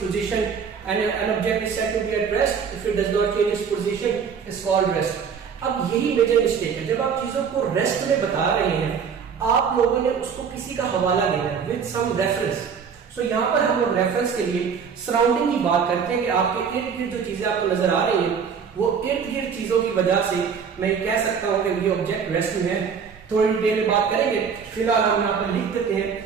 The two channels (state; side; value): quieter; left; 6.6 dB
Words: position and an object is said to be at rest if it does not change its position is called rest। अब यही मेजर मिस्टेक है, जब आप चीजों को रेस्ट में बता रहे हैं आप लोगों ने उसको किसी का हवाला देना है विद सम रेफरेंस। सो यहाँ पर हम लोग रेफरेंस के लिए सराउंडिंग की बात करते हैं कि आपके इर्द गिर्द जो चीजें आपको नजर आ रही हैं वो इर्द गिर्द चीजों की वजह से मैं कह सकता हूं कि ये ऑब्जेक्ट रेस्ट में है। थोड़ी डिटेल में बात करेंगे, फिलहाल हम यहाँ पर लिख देते